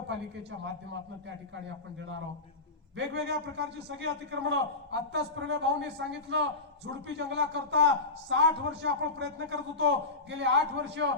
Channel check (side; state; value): right; quieter; 3.4 dB